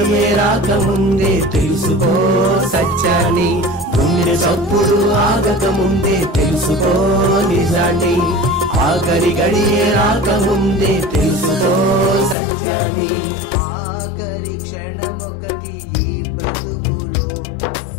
రాకముందే తెలుసుకో సత్యాన్ని. గుండె చప్పుడు ఆగకముందే తెలుసుకో నిజాన్ని, ఆఖరి గడియే రాకముందే తెలుసుకో సత్యాన్ని. ఆఖరి క్షణమొకటి ఈ బ్రతుకులో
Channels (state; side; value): drops out; right; at 12.4 s